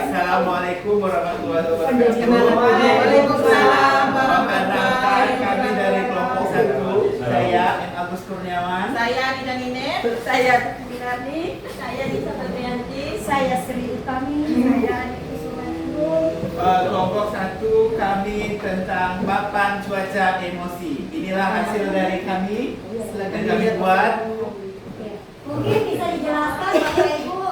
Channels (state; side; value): identical; both; correlation 1.00